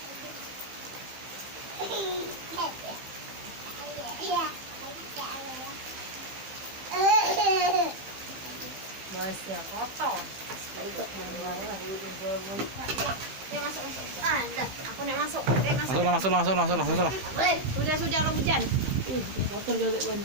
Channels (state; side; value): late; left; 15 ms